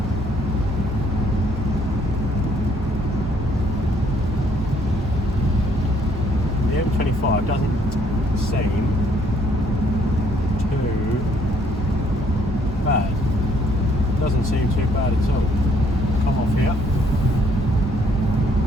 The M25 doesn't seem too bad. Doesn't seem too bad at all. Come off here.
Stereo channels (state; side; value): normal; both; correlation 0.66